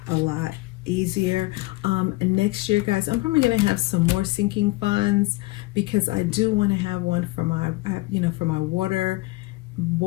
a lot easier. Next year, guys, I'm probably gonna have some more sinking funds because I do want to have one for my, for my water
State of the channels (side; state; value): right; quieter; 21.6 dB